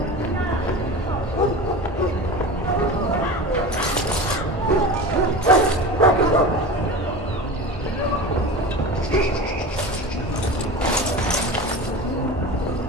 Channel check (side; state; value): both; normal; correlation 0.30